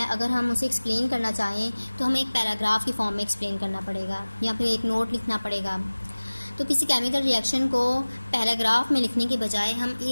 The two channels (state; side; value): inverted; both; correlation -1.00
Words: अगर हम उसे एक्सप्लेन करना चाहें तो हमें एक पैराग्राफ की फॉर्म में एक्सप्लेन करना पड़ेगा या फिर एक नोट लिखना पड़ेगा। तो किसी केमिकल रिएक्शन को पैराग्राफ में लिखने के बजाय हम